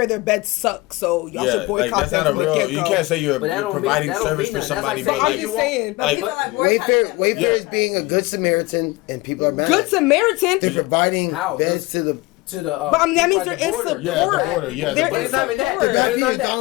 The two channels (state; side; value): quieter; right; 21.7 dB